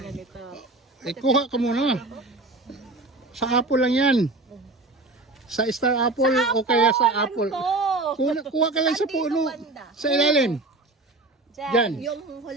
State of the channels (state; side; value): quieter; left; 3.0 dB